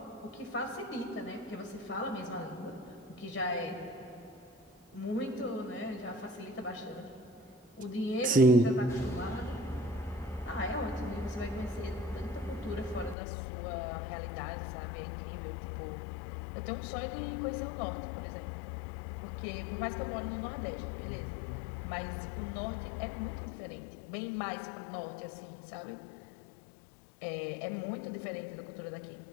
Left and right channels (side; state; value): right; drops out; at 13.2 s